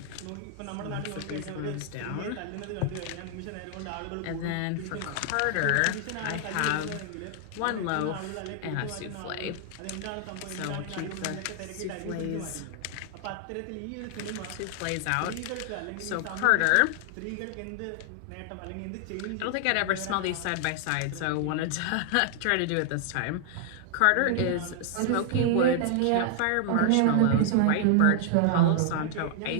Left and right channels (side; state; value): both; different; correlation 0.00